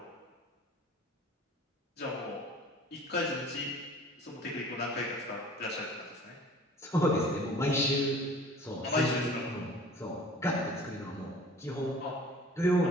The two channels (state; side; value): normal; both; correlation 0.47